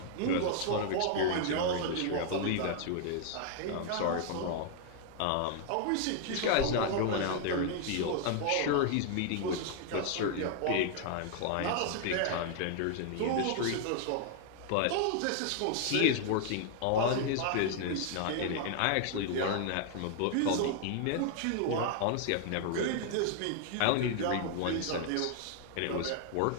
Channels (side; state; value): both; different; correlation 0.00